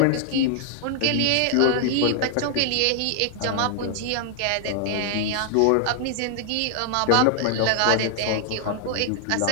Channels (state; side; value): different; both; correlation 0.00